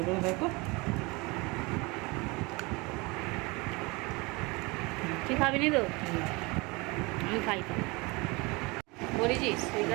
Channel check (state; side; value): quieter; left; 25.8 dB